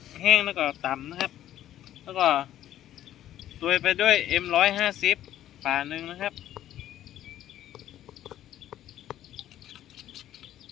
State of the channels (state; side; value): quieter; right; 12.3 dB